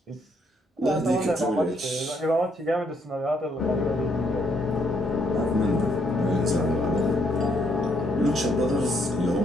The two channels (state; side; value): normal; both; correlation 0.72